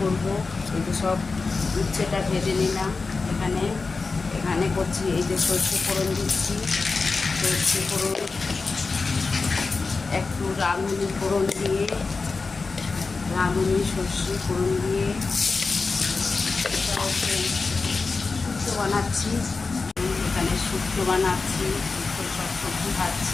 করব। এই যে সব উচ্ছেটা ভেজে নিলাম। এখানে এখানে করছি, এই যে সর্ষে ফোড়ন দিচ্ছি। সর্ষে ফোড়ন একটু রাঁধুনি ফোড়ন দিয়ে, রাঁধুনি সর্ষে ফোড়ন দিয়ে এটা হচ্ছে শুক্তো বানাচ্ছি। এখানে শুক্তো বানাচ্ছি, শুক্তো সব সবজি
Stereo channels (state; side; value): quieter; right; 4.2 dB